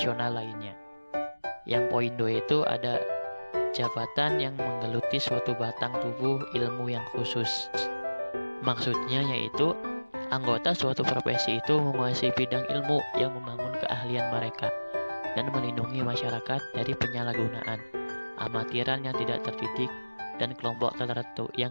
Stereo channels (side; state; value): both; inverted; correlation -1.00